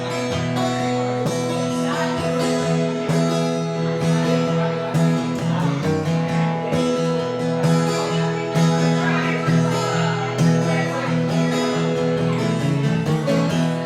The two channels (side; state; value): both; identical; correlation 1.00